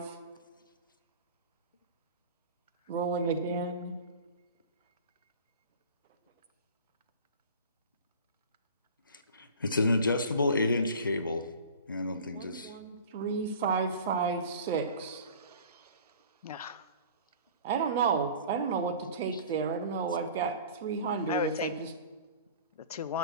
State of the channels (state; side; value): inverted; both; correlation -0.41